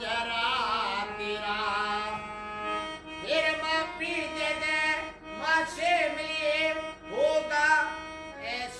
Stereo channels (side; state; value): both; identical; correlation 1.00